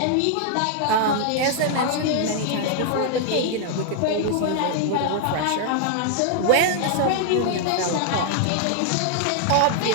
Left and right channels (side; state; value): both; different; correlation 0.00